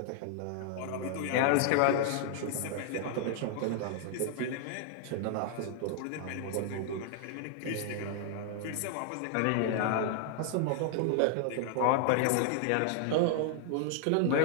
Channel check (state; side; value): different; both; correlation 0.00